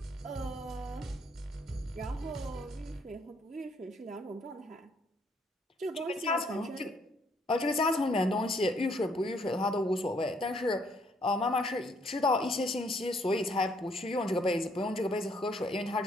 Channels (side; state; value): both; normal; correlation 0.68